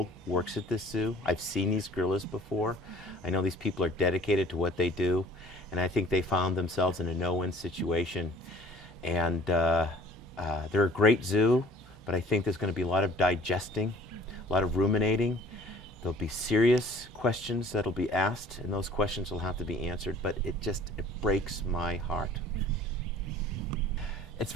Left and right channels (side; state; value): both; normal; correlation 0.51